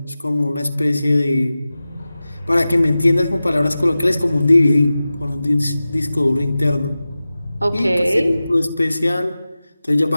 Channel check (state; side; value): inverted; both; correlation -0.95